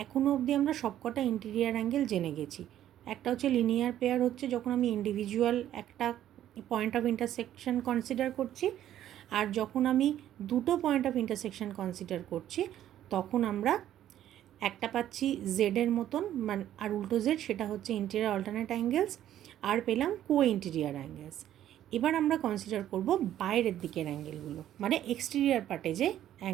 এখনও অবধি আমরা সবকটা ইন্টেরিয়ার অ্যাঙ্গেল জেনে গেছি। একটা হচ্ছে লিনিয়ার পেয়ার, হচ্ছে যখন আমি ইন্ডিভিজুয়াল একটা পয়েন্ট অফ ইন্টারসেকশন কনসিডার করছি, আর যখন আমি দুটো পয়েন্ট অফ ইন্টারসেকশন কনসিডার করছি তখন আমরা একটা পাচ্ছি জেডের মতন, মানে আর উল্টো জেড, সেটা হচ্ছে ইন্টেরিয়ার অল্টারনেট অ্যাঙ্গেলস, আর পেলাম কো ইন্টেরিয়ার অ্যাঙ্গেলস। এবার আমরা কনসিডার করব বাইরের দিকের অ্যাঙ্গেলগুলো, মানে এক্সটেরিয়ার পার্টে যে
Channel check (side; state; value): left; quieter; 11.8 dB